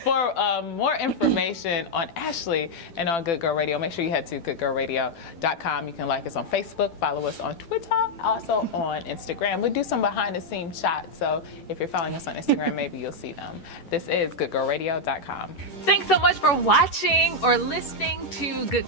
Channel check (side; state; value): right; late; 11 ms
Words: For more information on Ashlee and on Good Girl Radio, make sure you head to goodgirlradio.com. You can like us on Facebook, follow us on Twitter, also on Instagram. We do some behind-the-scenes shots, so if you're following us on Instagram, maybe you'll see them. This is goodgirlradio.com. Thanks so much for watching or listening to Good